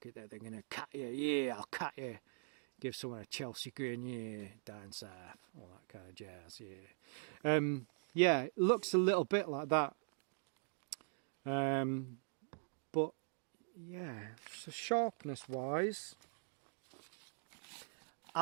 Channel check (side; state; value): left; silent; digital silence